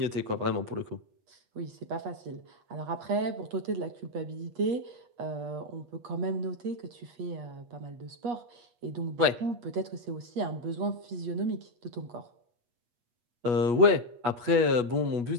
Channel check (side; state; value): left; late; 8.3 ms